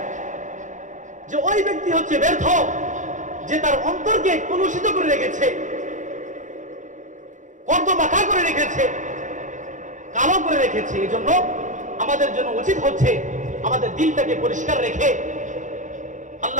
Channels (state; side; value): late; left; 0.36 ms